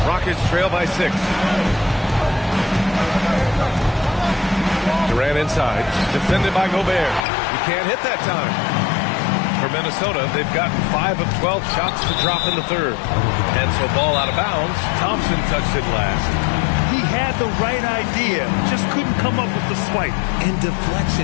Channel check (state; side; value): drops out; right; at 7.2 s